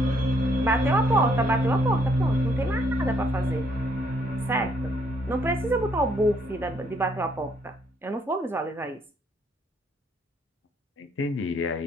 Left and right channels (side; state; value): both; normal; correlation 0.69